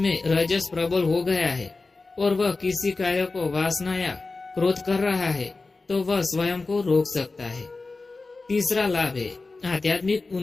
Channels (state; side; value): quieter; right; 3.6 dB